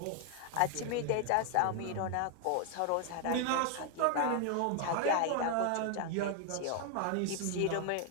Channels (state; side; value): different; both; correlation 0.00